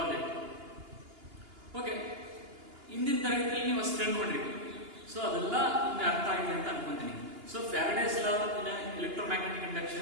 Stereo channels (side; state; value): left; late; 2.8 ms